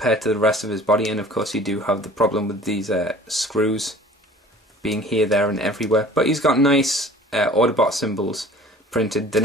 to the rest of his body. And of course you do have the problem with these screws being here, there and everywhere. But he's got nice Autobot symbols printed. They're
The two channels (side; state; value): both; normal; correlation 0.47